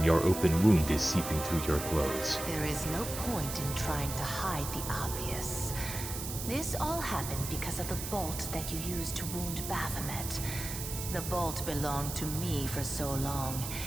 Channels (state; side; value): noise; right; hiss, 7 dB below the sound